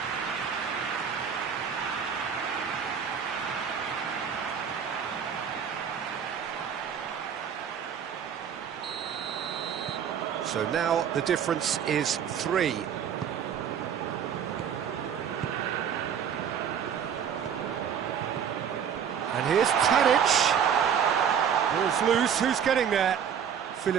So now the difference is 3. And here's Tadic. Ball's loose, who's getting there?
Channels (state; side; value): quieter; left; 8.0 dB